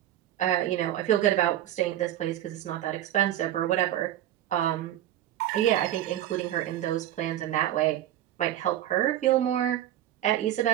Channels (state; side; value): quieter; left; 12.6 dB